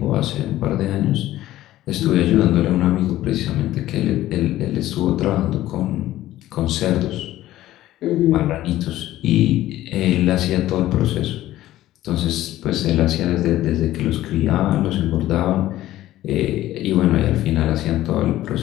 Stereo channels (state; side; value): quieter; right; 14.7 dB